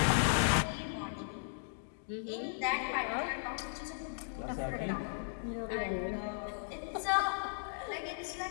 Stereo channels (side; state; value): right; silent; digital silence